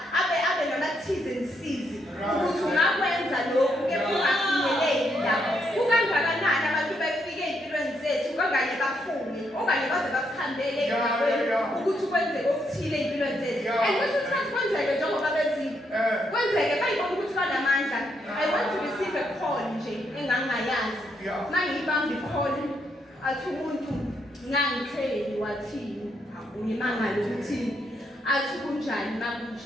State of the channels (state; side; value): normal; both; correlation 0.77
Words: abe namathize nisizi ukuthi ungakwenza lokhu kepha ungafinyeleli lapho. Kukangakanani abantu befike empilweni zethu kanganye bafune okanye baze basihambele ukuthi kwenzeke okuthile empilweni zethu. And kwesinye isikhathi kwenzeke njengoba bezile kwenzeke bayibona ukuthi banamandla. I want to receive a call nje engangayazi mangiyibamba ikholi athi umuntu ngangitheli wathini ngimangala ukuthi athi kunjani